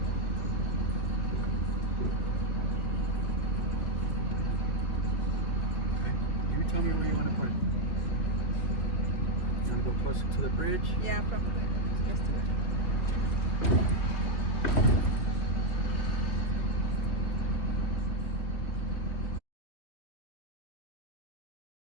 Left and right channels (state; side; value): late; right; 3.2 ms